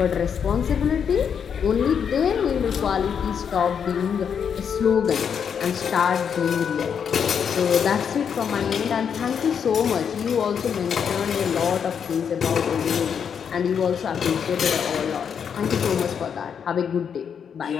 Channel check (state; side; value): quieter; right; 7.4 dB